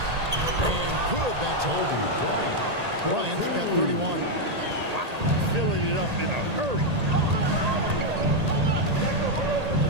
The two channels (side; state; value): left; late; 1.8 ms